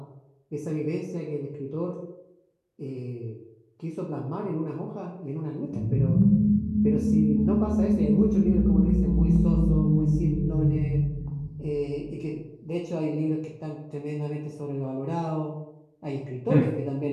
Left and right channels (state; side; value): identical; both; correlation 1.00